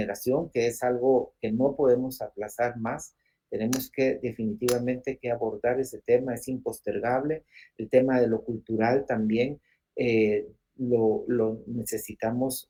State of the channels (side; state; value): both; identical; correlation 1.00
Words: que es algo que no podemos aplazar más. Tenemos que definitivamente que abordar ese tema, es impostergable. El tema de lo cultural también lo necesitamos